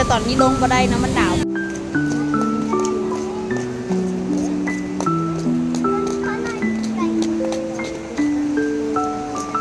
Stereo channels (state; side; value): identical; both; correlation 1.00